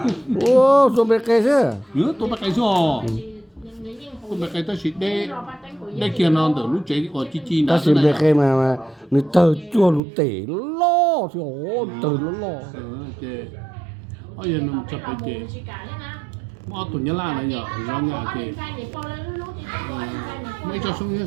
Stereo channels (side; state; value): left; drops out; at 10.0 s